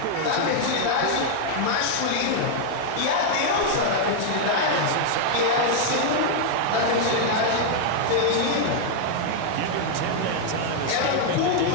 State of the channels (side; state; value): both; different; correlation 0.00